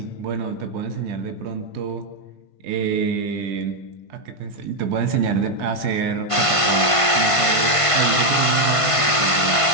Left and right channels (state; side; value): late; right; 1.5 ms